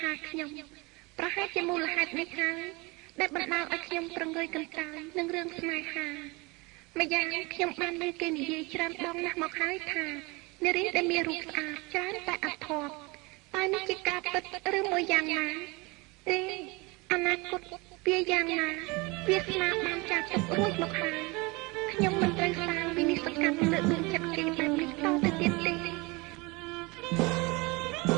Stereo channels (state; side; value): quieter; left; 26.0 dB